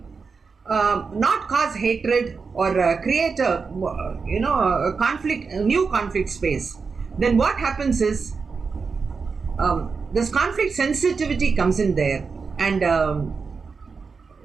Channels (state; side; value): quieter; left; 5.0 dB